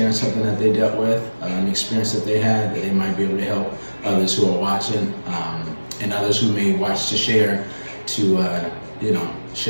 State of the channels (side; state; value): both; inverted; correlation -1.00